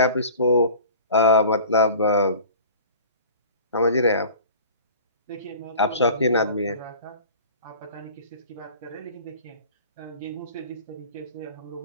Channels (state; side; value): inverted; both; correlation -0.42